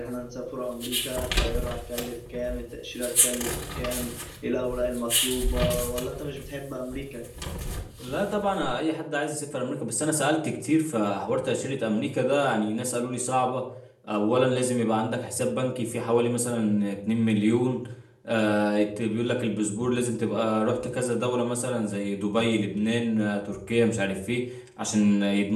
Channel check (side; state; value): both; identical; correlation 1.00